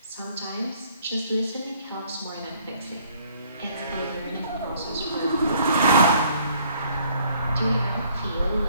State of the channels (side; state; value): both; inverted; correlation -0.61